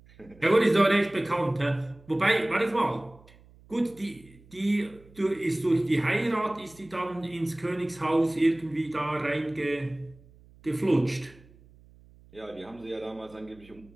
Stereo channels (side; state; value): right; noise; hum, 25 dB below the sound